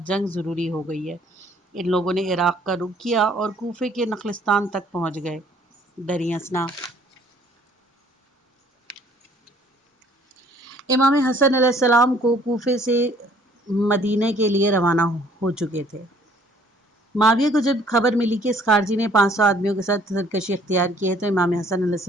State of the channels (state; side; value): normal; both; correlation 0.59